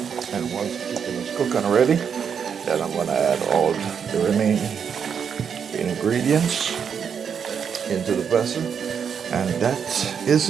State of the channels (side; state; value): left; quieter; 7.2 dB